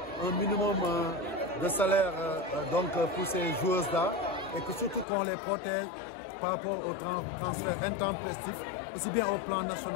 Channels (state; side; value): drops out; right; at 5.1 s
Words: un minimum de salaire donc pour ces joueuses-là et que surtout qu'on les protège par rapport au transfert intempestif, aussi bien au plan